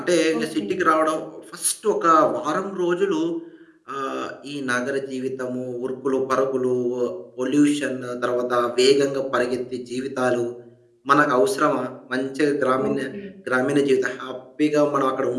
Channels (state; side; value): identical; both; correlation 1.00